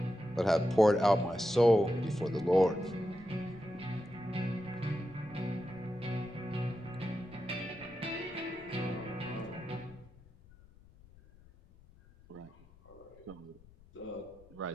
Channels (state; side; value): noise; left; rumble, 24 dB below the sound